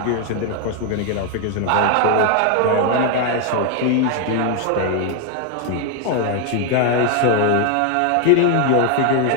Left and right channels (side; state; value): both; different; correlation 0.01